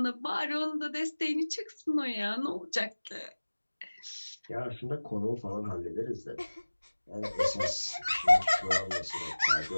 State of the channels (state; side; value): inverted; both; correlation -1.00